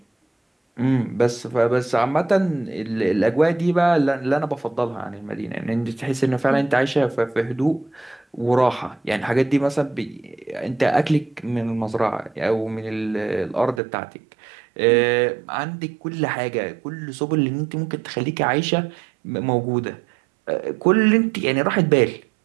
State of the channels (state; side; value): drops out; left; at 13.8 s